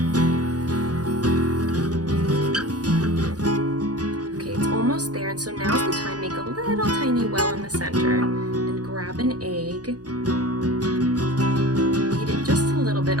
Okay, it's almost there, and so now's the time. Make a little tiny well in the center and grab an egg.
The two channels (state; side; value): late; left; 0.68 ms